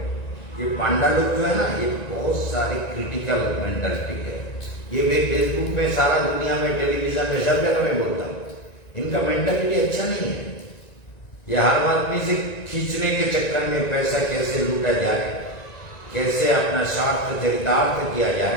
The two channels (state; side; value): late; right; 1.9 ms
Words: ये पांडा लोग जो है ना, ये बहुत सारे क्रिटिकल मेंटालिटी है। ये मैं फेसबुक में, सारा दुनिया में, टेलीविजन में, सब जगह में बोलता हूँ, इनका मेंटालिटी अच्छा नहीं है। ये हर आदमी से खींचने के चक्कर में पैसा कैसे लूटा जाए, कैसे अपना स्वार्थ चरितार्थ किया